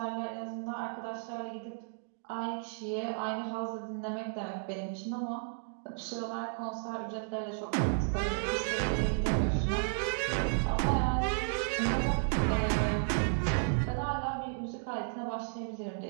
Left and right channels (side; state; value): left; silent; digital silence